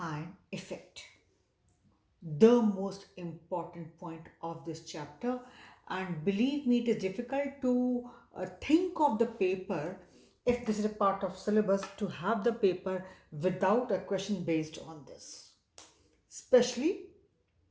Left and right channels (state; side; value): identical; both; correlation 1.00